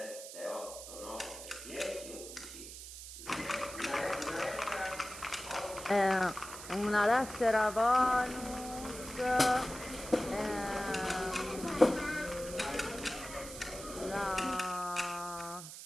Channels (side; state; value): right; noise; hiss, 11 dB below the sound